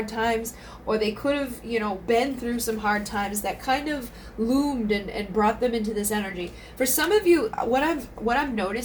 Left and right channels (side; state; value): both; identical; correlation 1.00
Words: times, or they could have, you know, been through some hard times that kind of loomed and brought them into this energy. For some of you, what I'm